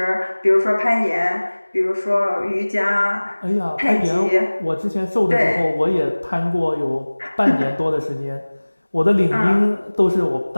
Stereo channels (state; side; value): inverted; both; correlation -1.00